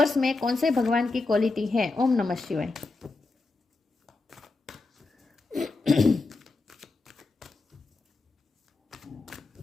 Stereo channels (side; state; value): right; quieter; 3.6 dB